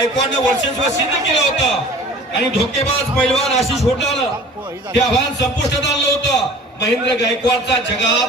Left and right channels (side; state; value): both; normal; correlation 0.45